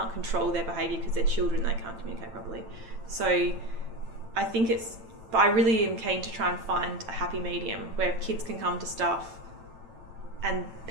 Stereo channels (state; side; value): late; left; 9.0 ms